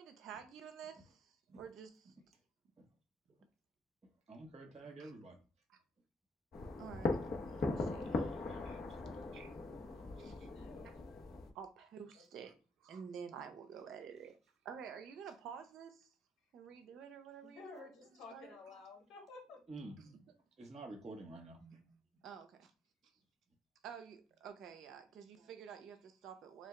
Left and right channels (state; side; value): normal; both; correlation 0.73